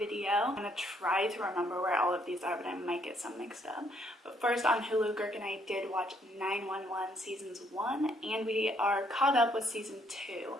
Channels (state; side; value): normal; both; correlation 0.69